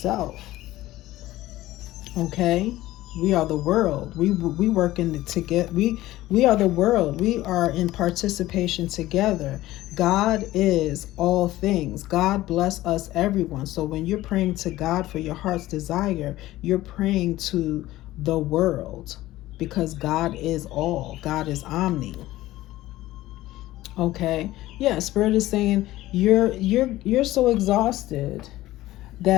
Okay, we are the world. We work in together. We are the world. We are in participation together. God is all things. God bless us, everyone. So when you're praying to God for your heart's desire, you're praying to the world, because God is all. God is omni. Okay. Yeah, Spirit is saying you're so exhausted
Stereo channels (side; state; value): right; quieter; 16.3 dB